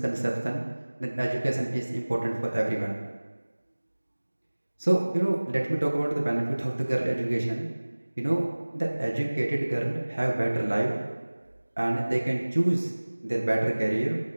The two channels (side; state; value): both; inverted; correlation -1.00